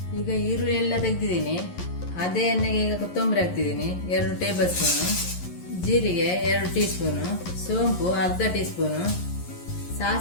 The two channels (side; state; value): right; late; 11 ms